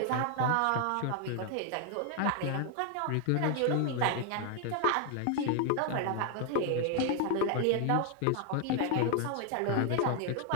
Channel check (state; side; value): different; both; correlation 0.00